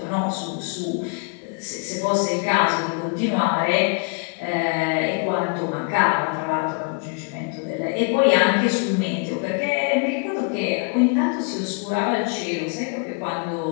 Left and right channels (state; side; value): quieter; right; 36.7 dB